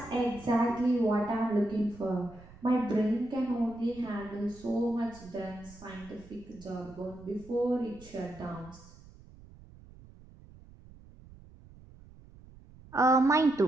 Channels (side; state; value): right; noise; rumble, 21 dB below the sound